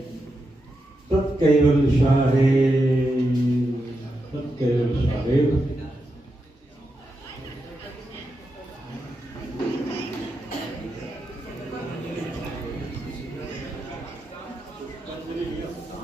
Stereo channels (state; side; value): normal; both; correlation 0.86